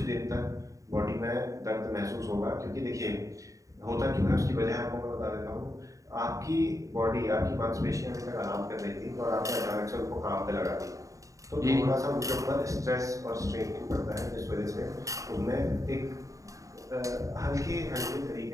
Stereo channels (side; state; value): left; late; 0.16 ms